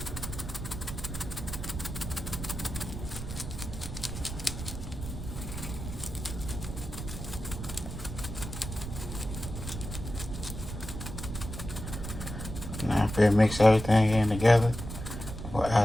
Now after you mix everything in together, we'll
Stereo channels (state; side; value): noise; right; rumble, 7 dB below the sound